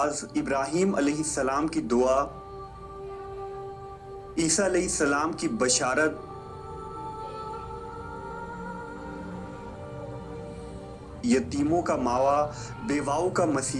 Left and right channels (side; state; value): both; identical; correlation 1.00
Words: ابراہیم علیہ السلام کی دعا، عیسیٰ علیہ السلام کی بشارت، یتیموں کا ماوا، بیواؤں کا